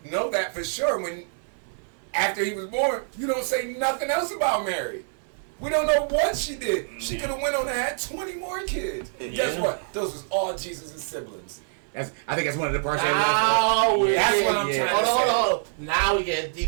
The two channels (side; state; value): left; silent; 61 dB below the other